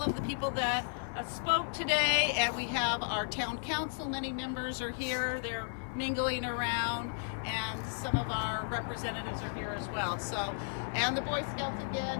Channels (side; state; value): right; silent; 55 dB below the other